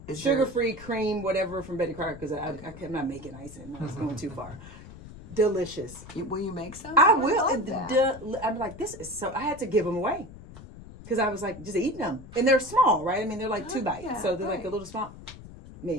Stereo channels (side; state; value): left; noise; rumble, 16 dB below the sound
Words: sugar-free cream, whatever from Betty Crocker, because I'm not making icing. I was going too far. Delicious. Will you make some? I will. love that. I'm like, this is so. I had to give them away because I was like, just eating them, and they're small, right? I mean, they're like 2 bites, yeah, so they're like right. a little small.